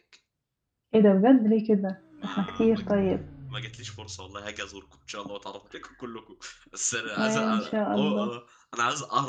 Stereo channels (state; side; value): identical; both; correlation 1.00